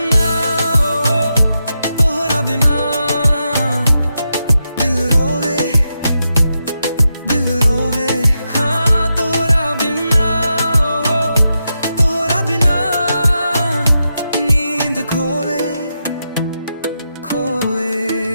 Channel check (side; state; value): both; inverted; correlation -0.87